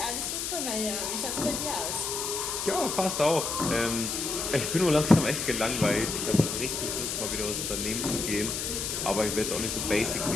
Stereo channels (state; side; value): noise; left; hiss, 2 dB below the sound